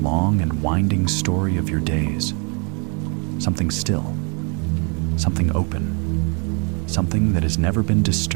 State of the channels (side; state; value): left; quieter; 35.0 dB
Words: and winding story of your days. Something still, something open, something that has never been